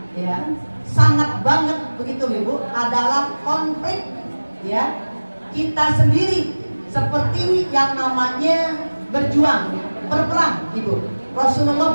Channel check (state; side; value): inverted; both; correlation -1.00